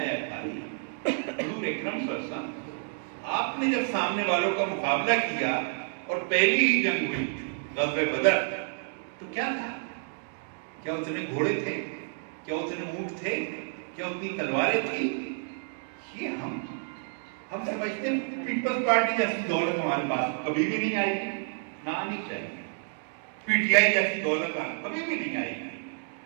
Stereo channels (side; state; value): left; silent; 58 dB below the other